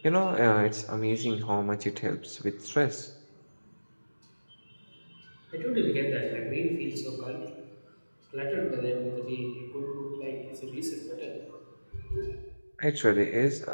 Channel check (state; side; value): inverted; both; correlation -1.00